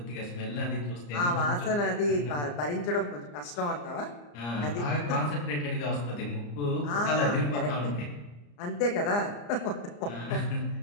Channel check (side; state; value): right; late; 34 ms